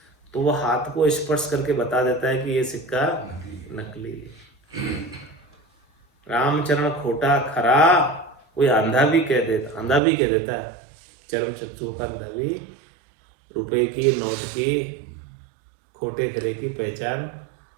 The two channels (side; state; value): left; drops out; at 10.0 s